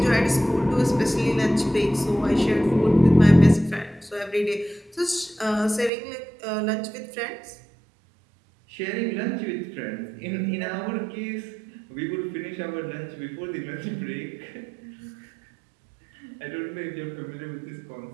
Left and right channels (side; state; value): left; drops out; at 5.9 s